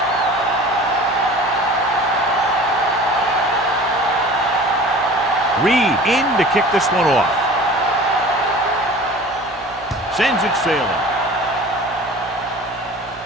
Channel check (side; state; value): right; noise; hum, 26 dB below the sound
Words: Reed in to kick this one off. Sends it sailing.